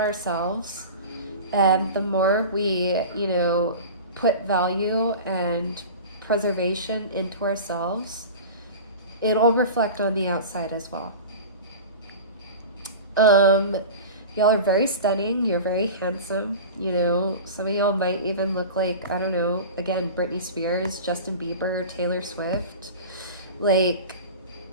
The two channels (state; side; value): inverted; both; correlation -0.33